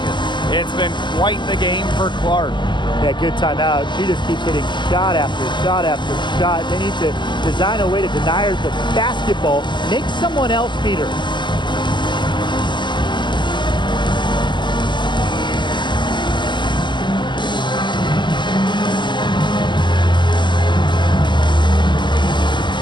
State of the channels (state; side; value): late; right; 0.22 ms